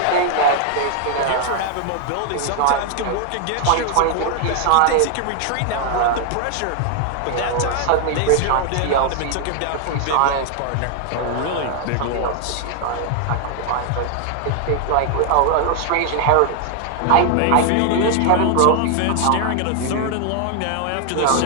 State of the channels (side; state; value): both; different; correlation 0.00